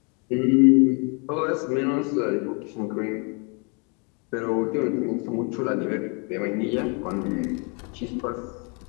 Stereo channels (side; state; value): right; quieter; 34.9 dB